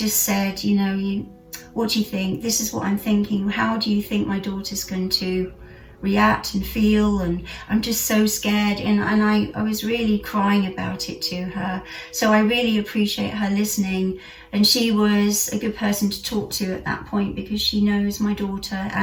said, you know, what do you think? This is what I'm thinking. How do you think my daughter's going to react and feel? And I'm just so scared, and I was really crying about it to her. So I really appreciate her listening, and she was a good person to talk to at that point, because she knows my daughter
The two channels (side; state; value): both; identical; correlation 1.00